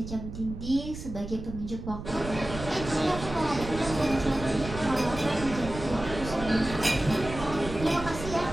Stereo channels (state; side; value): noise; right; rumble, 10 dB below the sound